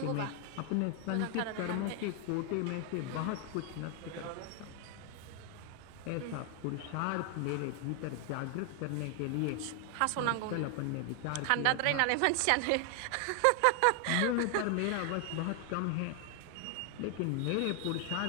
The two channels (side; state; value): both; different; correlation 0.00